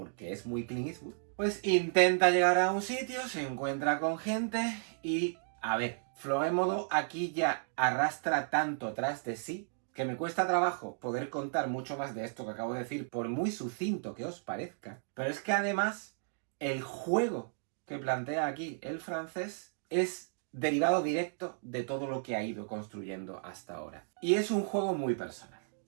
es muy Clint Eastwood, pues intenta llegar a un sitio, se encuentra con gente y, a ver, Florémodo aquí ya arrastra tanto tras de sí que me cuesta trabajo poder contar mucho más de esto que acabo de decir, por muy sucinto que os parezca. Pero es que además, el juego que plantea aquí el francés es derivado directo de todo lo que ha ido construyendo hasta ahora. Y es un juego muy personal.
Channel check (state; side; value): silent; left; digital silence